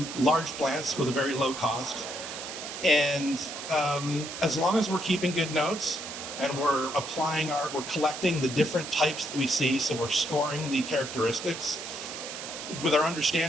large plants with a very low cost. And as long as we're keeping good notes and we're collecting the different types that we see, so we're scoring the characteristics with our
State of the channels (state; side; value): noise; right; hiss, 9 dB below the sound